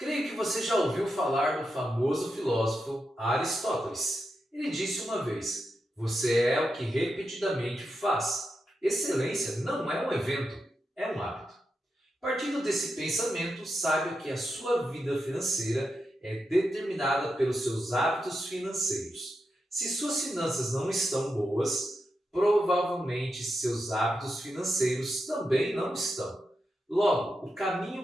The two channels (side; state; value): both; normal; correlation 0.87